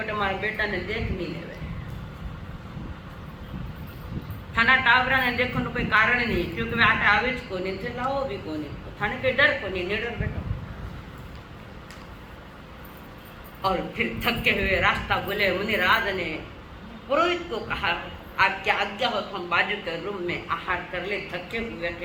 तुम्हारा बेटा ने देख नहीं ले। थाना टावरा ने देखो कोई कारण नहीं, क्योंकि वे आटे आवेज को नहीं थे, लाओ भी को नहीं, थाने के डर को नहीं, निडर बेटा। और फिर थके हुए रास्ता बोले मुनिराज ने पुरोहित को कहा आप क्या आज्ञा हो तो हम बाजू के रूम में आहार कर ले, थके हुए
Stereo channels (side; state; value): both; identical; correlation 1.00